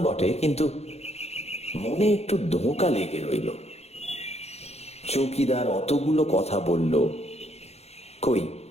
বটে, কিন্তু মনে একটু ধোঁকা লেগে রইল। চৌকিদার অতগুলো কথা বলল, কই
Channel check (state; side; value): late; right; 0.31 ms